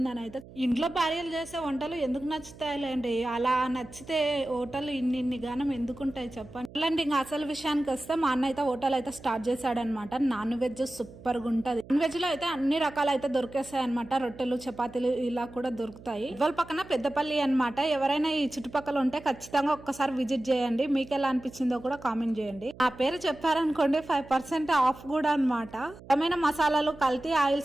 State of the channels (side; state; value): right; noise; hum, 19 dB below the sound